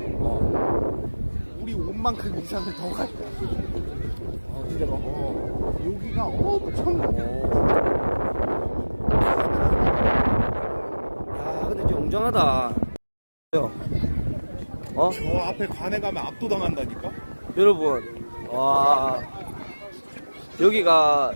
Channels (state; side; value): inverted; both; correlation -1.00